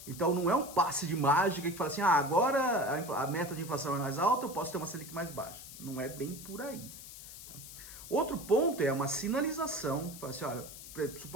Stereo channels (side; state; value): left; noise; hiss, 14 dB below the sound